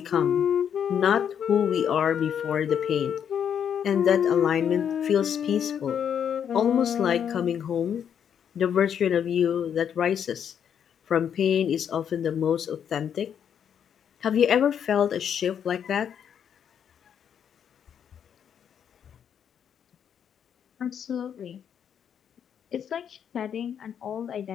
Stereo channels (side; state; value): right; quieter; 8.4 dB